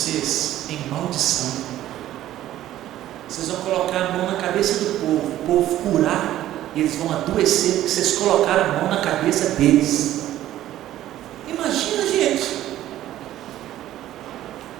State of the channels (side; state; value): left; quieter; 13.4 dB